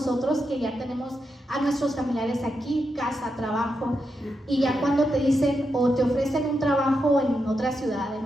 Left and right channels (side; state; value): both; normal; correlation 0.85